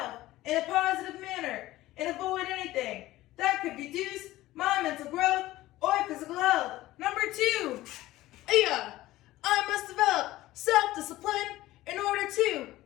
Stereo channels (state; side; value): quieter; right; 16.6 dB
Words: in a positive manner and avoid anything that could reduce my mental growth or physical health. Number 2. I must develop self-discipline in order to